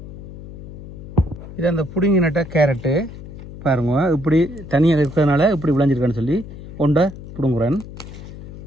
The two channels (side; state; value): left; noise; hum, 14 dB below the sound